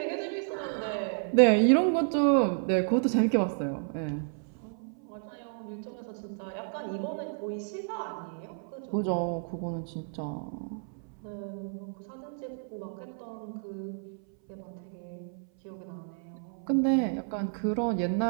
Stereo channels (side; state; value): left; silent; 57 dB below the other